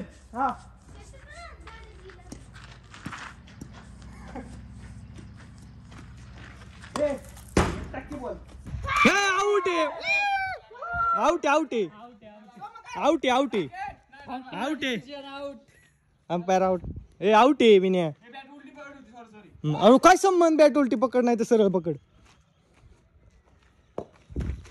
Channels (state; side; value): identical; both; correlation 1.00